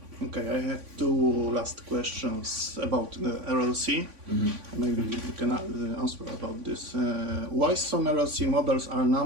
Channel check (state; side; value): late; left; 3.5 ms